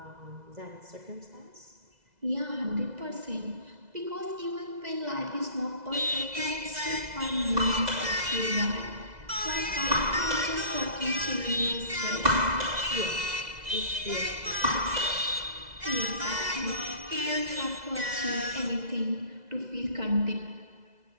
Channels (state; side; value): late; left; 2.0 ms